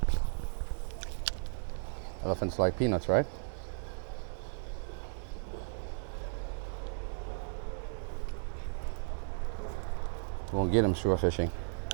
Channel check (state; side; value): silent; left; digital silence